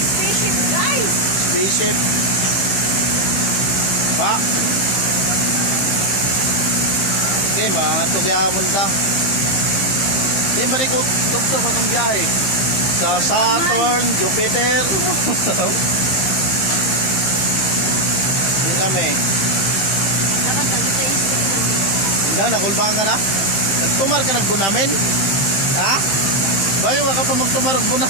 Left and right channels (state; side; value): late; right; 15 ms